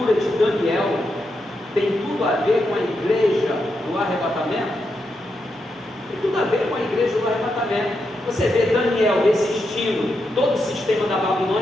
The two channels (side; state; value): both; normal; correlation 0.84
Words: de Daniel tem tudo a ver com a igreja do arrebatamento? Tem tudo a ver com a igreja do arrebatamento. Você vê Daniel resistindo todo o sistema da